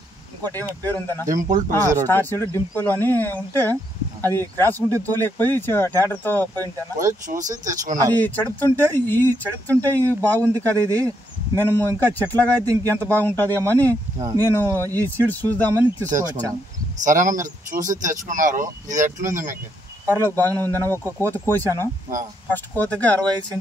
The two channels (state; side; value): normal; both; correlation 0.76